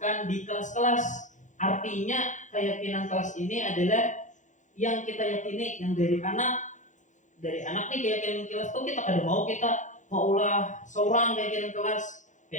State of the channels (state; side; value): late; right; 0.36 ms